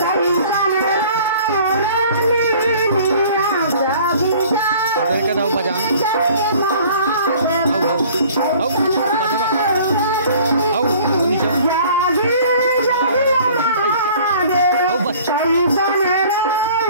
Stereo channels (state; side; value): inverted; both; correlation -0.50